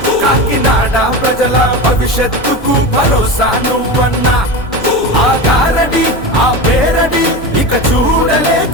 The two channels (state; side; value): normal; both; correlation 0.25